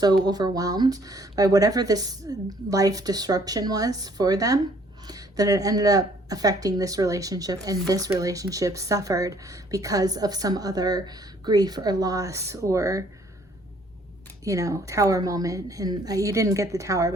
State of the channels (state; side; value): normal; both; correlation 0.61